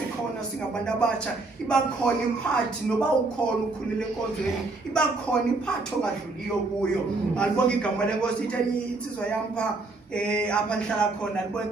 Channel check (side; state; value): left; quieter; 3.4 dB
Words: singabantu abatsha. Iba khona iparty noba ukhona ukhulile enkonzweni. Iba khona iparty ongadluliyo kuyo. Alibonga igama lenkosi itheni insizwa yam pha apha ndihlala khona alibonga